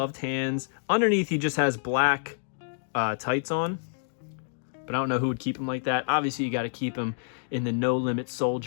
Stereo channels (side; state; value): right; silent; digital silence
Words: hands. Underneath, he just has black tights on, but I don't know who would keep him like that. Obviously, you got to keep him in the No Limit